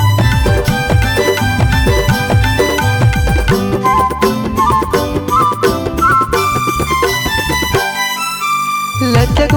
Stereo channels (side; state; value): both; identical; correlation 1.00